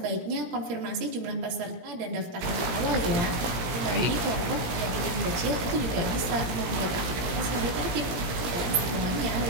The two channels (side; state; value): left; late; 17 ms